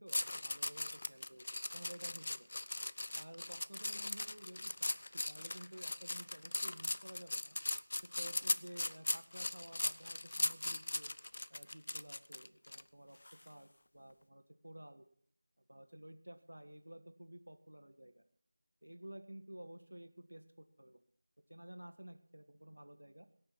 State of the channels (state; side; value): inverted; both; correlation -1.00